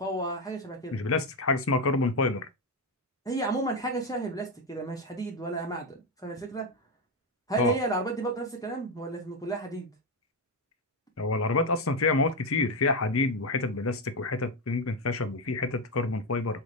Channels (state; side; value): normal; both; correlation 0.09